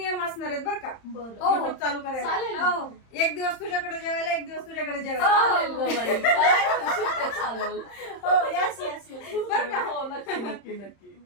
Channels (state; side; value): late; right; 31 ms